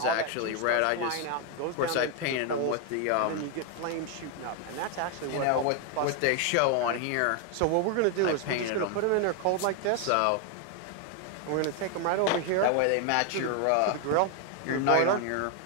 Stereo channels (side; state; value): both; different; correlation 0.01